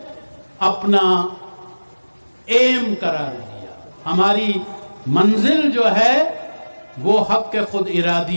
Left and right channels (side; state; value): both; inverted; correlation -1.00